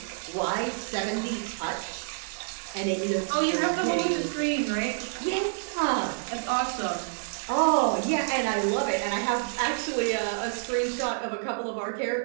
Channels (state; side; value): silent; left; digital silence